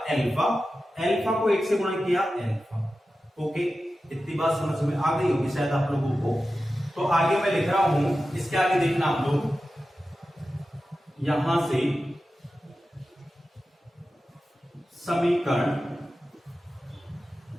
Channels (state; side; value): normal; both; correlation 0.93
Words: अल्फा। अल्फा को 1 से गुणा किया, अल्फा। ओके, इतनी बात समझ में आ गई होगी शायद आप लोगों को। तो आगे मैं लिख रहा हूं, इसके आगे देखना आप लोग, यहां से समीकरण